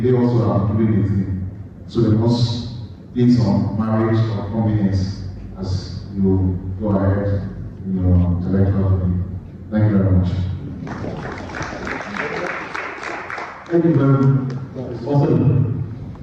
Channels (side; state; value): both; identical; correlation 1.00